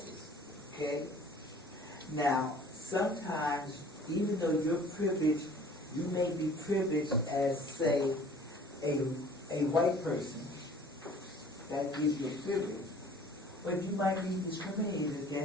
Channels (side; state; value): both; normal; correlation 0.50